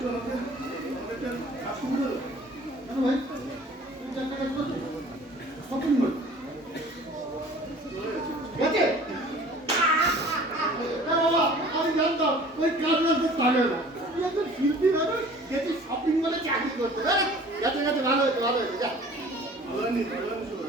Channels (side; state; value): both; normal; correlation 0.48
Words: কেন ভাই তুমি চারটা কাজ করছো শপিং মল গেছে আমি জানতাম ওই কাজ রাখতে পারে না তুই একজন শিল্পী মানুষ যেটি শপিং মলে চাকরি করতে গেছে গেছে ভালো হয়েছে ভালো হয়েছে যা ভালো হয়নি